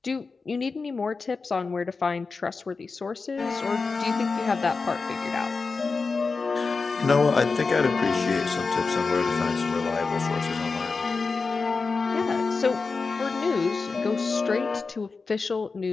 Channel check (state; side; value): quieter; right; 4.4 dB